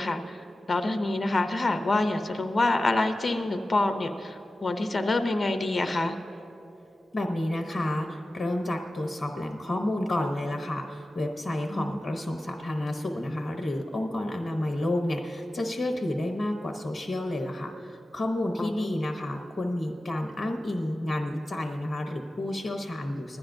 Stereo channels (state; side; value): normal; both; correlation 0.95